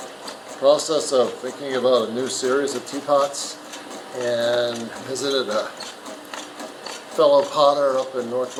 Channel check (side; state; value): both; identical; correlation 1.00